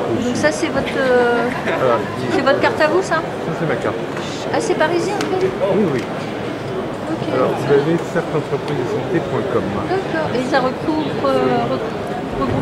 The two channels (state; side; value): identical; both; correlation 1.00